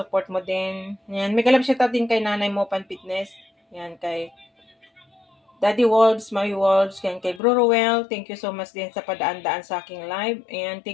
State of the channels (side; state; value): right; drops out; at 7.4 s